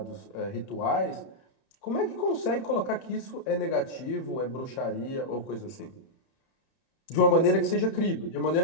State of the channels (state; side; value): late; right; 31 ms